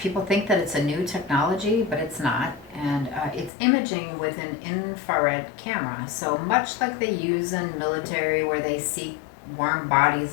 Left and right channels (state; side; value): drops out; right; at 3.5 s